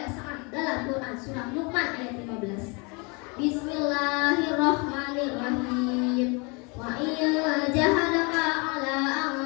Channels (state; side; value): quieter; right; 30.6 dB